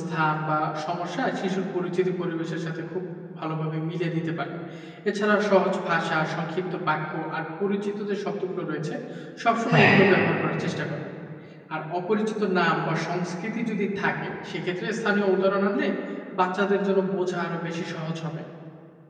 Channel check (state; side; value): identical; both; correlation 1.00